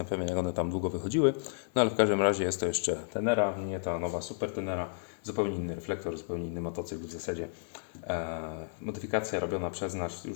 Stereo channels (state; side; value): silent; right; digital silence